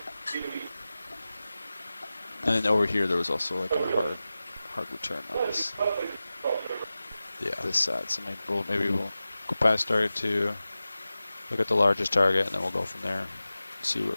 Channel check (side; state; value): both; inverted; correlation -0.95